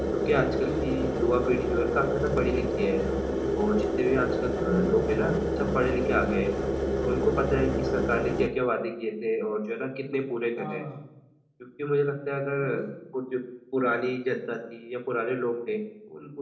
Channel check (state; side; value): identical; both; correlation 1.00